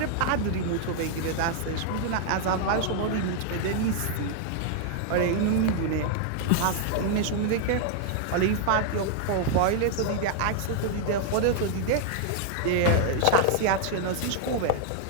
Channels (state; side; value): different; both; correlation 0.00